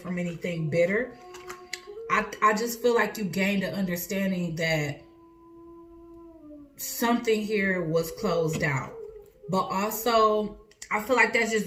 anything bitter. I just feel like you gained an understanding that something here was closed out. But also, I feel like that's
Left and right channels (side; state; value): both; identical; correlation 1.00